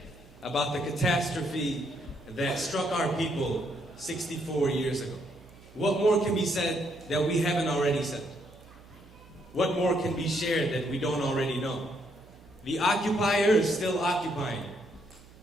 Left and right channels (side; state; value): right; noise; hum, 23 dB below the sound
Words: about the catastrophe that struck our people 64 years ago. What more can be said that we haven't already said? What more can be shared that we don't already know? The occupier is still occupying.